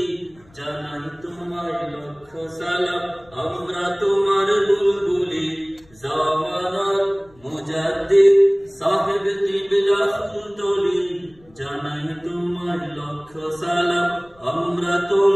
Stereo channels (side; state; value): left; noise; rumble, 29 dB below the sound